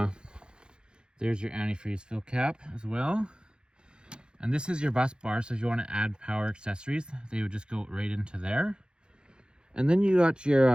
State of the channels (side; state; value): left; late; 0.049 ms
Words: there's your antifreeze fill cap as well. And this is your bus bar, so if you want to add power accessories, they would just go right into there. And then you got